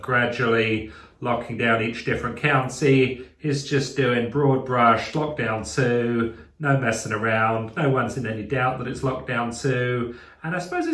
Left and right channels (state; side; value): identical; both; correlation 1.00